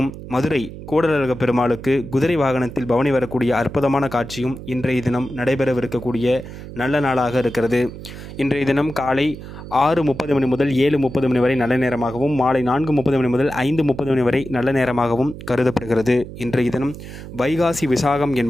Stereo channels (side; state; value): right; noise; hum, 12 dB below the sound